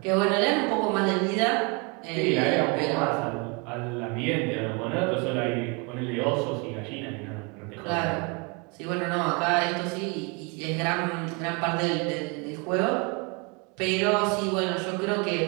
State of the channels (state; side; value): quieter; left; 30.5 dB